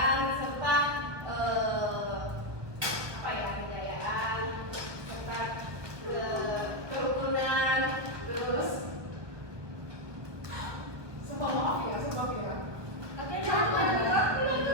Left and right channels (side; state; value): left; late; 1.3 ms